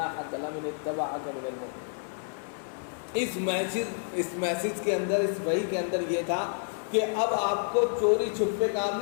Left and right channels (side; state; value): right; silent; 58 dB below the other